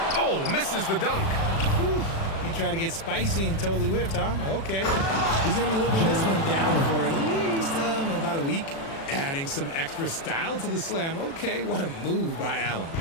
Oh, misses the dunk. Whew. He tried to get spicy and totally whiffed, huh? Okay. He's going to be living this one down for at least about a week. Adding some extra style to the slam. Okay, what a move by Allen.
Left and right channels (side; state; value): right; late; 36 ms